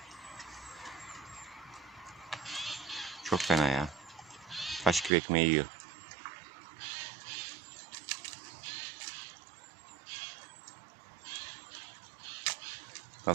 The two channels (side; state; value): left; drops out; at 5.1 s